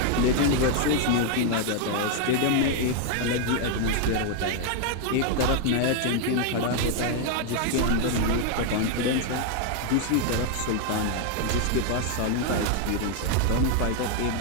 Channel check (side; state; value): both; different; correlation 0.00